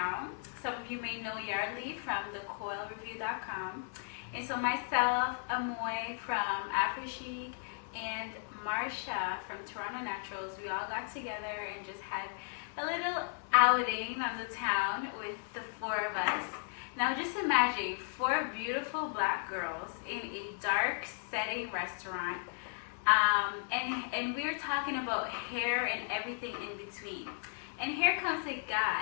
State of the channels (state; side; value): silent; right; 54 dB below the other